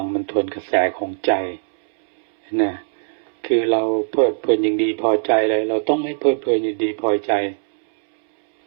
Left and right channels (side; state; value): left; silent; 66 dB below the other